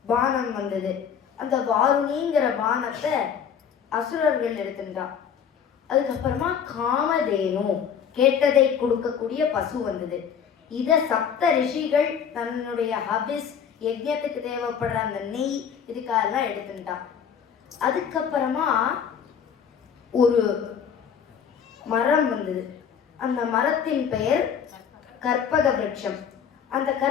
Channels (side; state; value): right; quieter; 7.6 dB